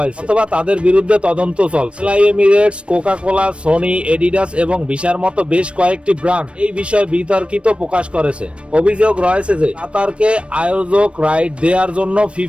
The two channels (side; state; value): left; late; 0.060 ms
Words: অথবা তাদের বিরুদ্ধে তদন্ত চলছে। এমিরেটস, কোকা-কোলা, সোনি, এডিডাস এবং ভিসার মতো বেশ কয়েকটি ব্র্যান্ড এই বিষয়ে বিতর্কিত প্রকাশ করেছে। অভিযোগ রয়েছে যে কাতারকে আয়োজক রাইট দেওয়ার জন্য